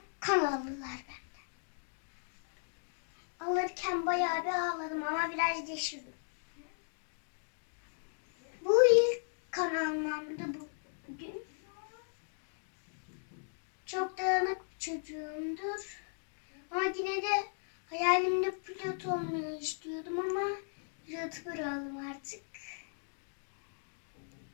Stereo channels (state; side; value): silent; right; digital silence